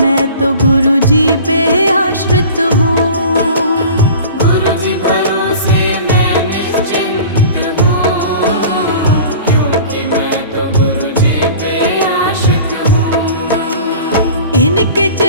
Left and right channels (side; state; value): both; inverted; correlation -0.41